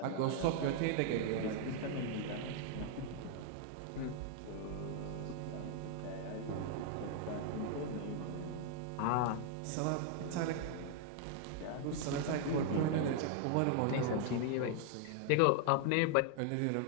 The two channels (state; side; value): different; both; correlation 0.00